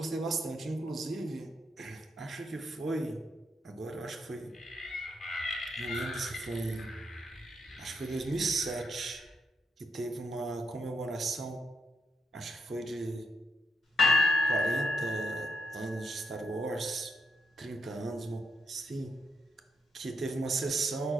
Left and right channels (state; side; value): normal; both; correlation 0.80